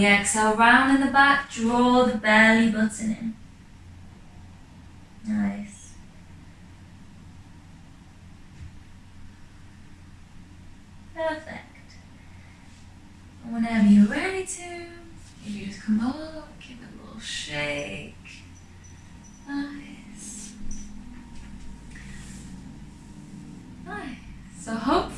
exhale, round in the back, draw the belly button in. Nice. Perfect. And whenever you're ready to, you just come up, give it a little shake. Nice. Nice. So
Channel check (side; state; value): both; identical; correlation 1.00